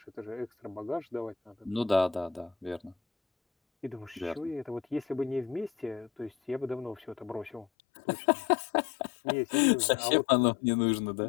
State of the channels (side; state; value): right; drops out; at 7.7 s